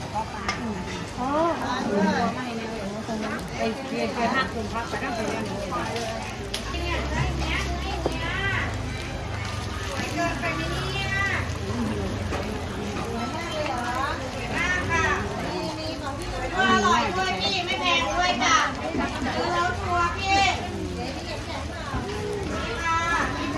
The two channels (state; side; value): identical; both; correlation 1.00